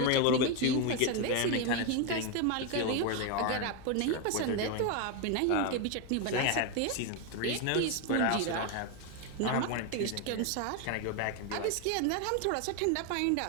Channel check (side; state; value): both; different; correlation 0.01